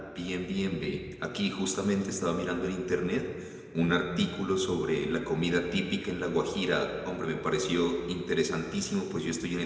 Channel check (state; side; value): identical; both; correlation 1.00